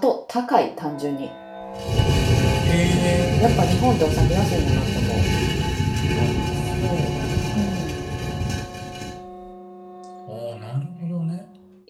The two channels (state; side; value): identical; both; correlation 1.00